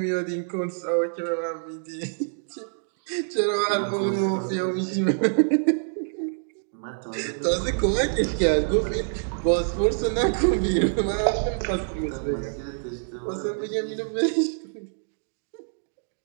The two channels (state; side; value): silent; left; digital silence